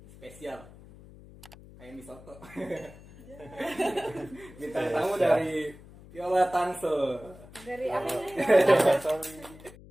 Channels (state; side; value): noise; left; hum, 20 dB below the sound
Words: spesial kayak Misoto. Bintang tamu dari Viola Tangsel. Dari apa ini?